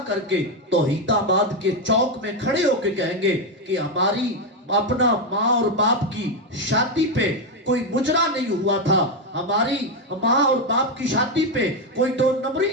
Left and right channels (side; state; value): both; normal; correlation 0.06